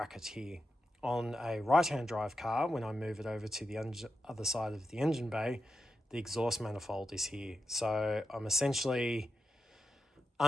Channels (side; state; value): both; normal; correlation 0.87